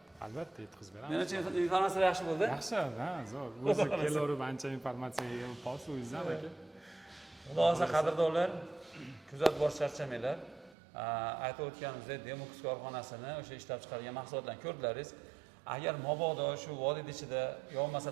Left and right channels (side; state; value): left; drops out; at 10.8 s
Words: Albatta yetkazib beramiz. Men uchun informatsiya yaxshi bo'ldi. Yaxshi, zo'r. O'zi kelaverib ancha informatsiyaga hosilingizdan aka. Xudo xolasa qadrdonlar, kuzatib borish charchamanglar. Aytib o'tganimizdek, Demox korxonasini o'sha ishlab chiqargan mahsulotlarni ko'rdilaringiz. Agar mabodo shu vodiy ichida yo'lmasa